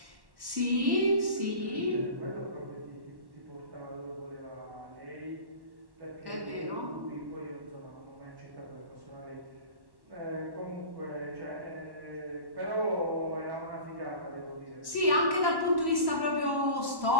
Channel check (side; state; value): left; late; 1.1 ms